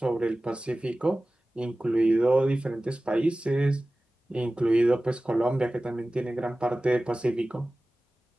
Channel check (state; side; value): normal; both; correlation 0.97